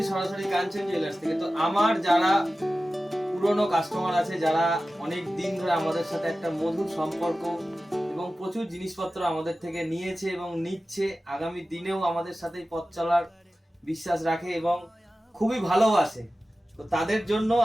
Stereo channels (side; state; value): both; normal; correlation 0.95